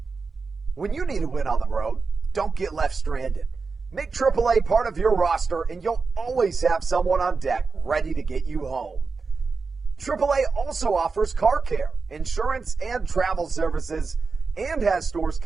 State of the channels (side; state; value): left; quieter; 4.6 dB